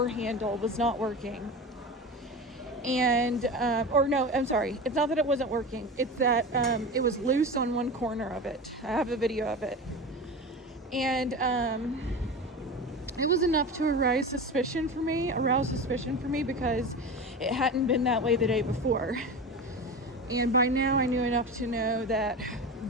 handle, was not working. And no, I'm sorry, it's not that it wasn't working, it's that it was loose on one corner of it. I have a video of it. And it was enough to arouse suspicion for me because it hadn't been that way the day before. And by now I knew enough to know that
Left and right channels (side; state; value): both; normal; correlation 0.28